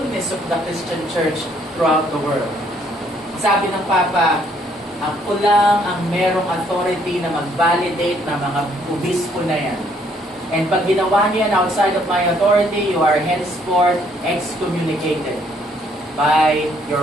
of the Christian Church throughout the world. Sabi ng Papa, ako lang ang merong authority na mag-validate ng mga obispo na yan. And pag ginawa niyan outside of my authority, you are henceforth excommunicated by your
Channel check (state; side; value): normal; both; correlation 0.66